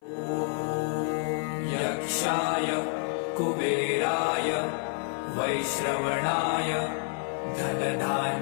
यक्षाय कुबेराय वैश्रवणाय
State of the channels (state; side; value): silent; right; 59 dB below the other